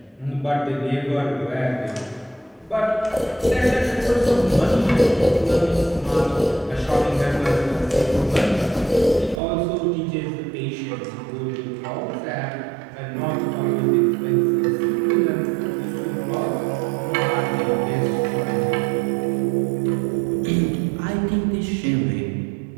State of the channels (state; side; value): drops out; left; at 9.4 s